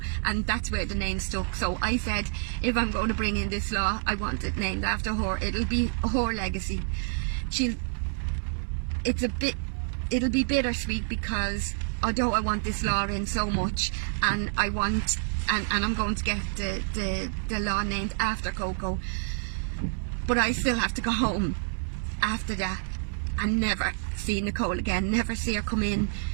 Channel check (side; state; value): left; silent; digital silence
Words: and that's where the name stuck. So I said, if I'm going to bring in this law, I want it named after her. It'll be her legacy. It'll be bittersweet because although I want this law in so much, and I'm going to get the law named after Coco, but I still have to go home after that and never see Nicole again, never see her come in,